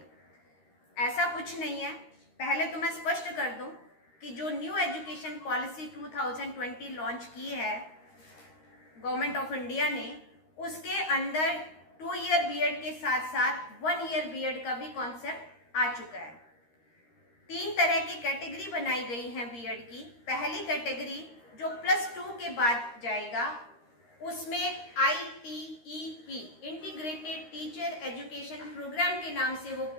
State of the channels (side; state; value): right; late; 13 ms